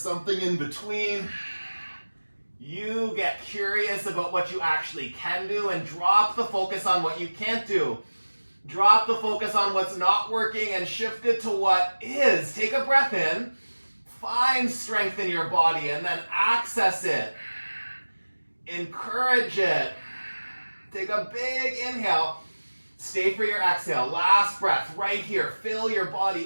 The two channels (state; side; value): inverted; both; correlation -1.00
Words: in between. You get curious about what you actually can do and drop the focus on what you can't do. Drop the focus on what's not working and shift it to what is. Take a breath in. Find strength in your body and then access it. Encourage it. Take a big inhale. Stay for your exhale. Last breath right here. Fill your